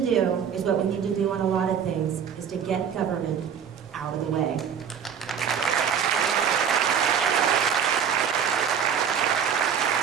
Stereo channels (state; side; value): quieter; left; 7.7 dB